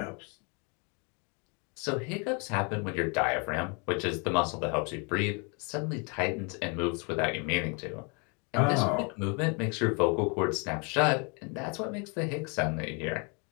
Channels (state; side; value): quieter; right; 33.9 dB